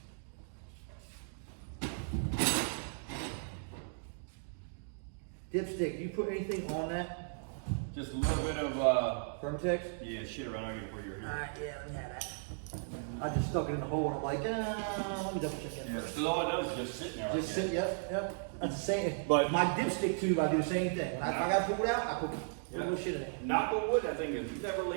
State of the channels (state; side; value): silent; left; digital silence